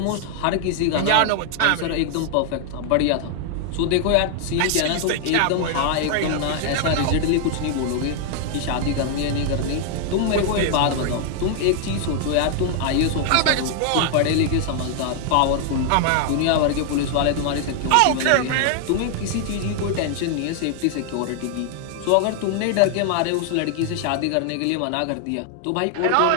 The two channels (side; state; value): both; different; correlation 0.00